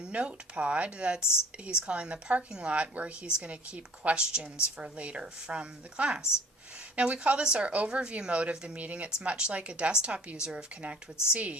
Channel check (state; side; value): normal; both; correlation 0.49